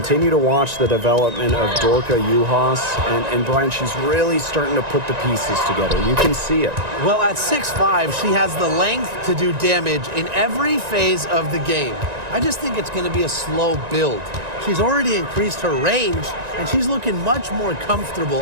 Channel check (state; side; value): late; left; 1.9 ms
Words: to watch the development of Dorka Uhas. And Brian, she's really starting to put the pieces together. You can see it. Well, at 6'5", she has the length to do damage in every phase of the game. I just think it's going to be a slow build. She's already increased her range, and she's looking much more comfortable